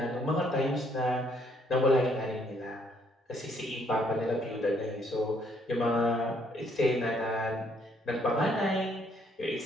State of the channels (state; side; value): normal; both; correlation 0.68